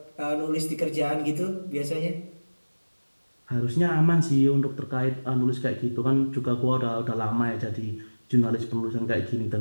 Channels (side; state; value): both; inverted; correlation -1.00